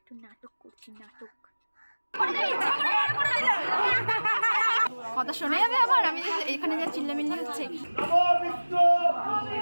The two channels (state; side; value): inverted; both; correlation -1.00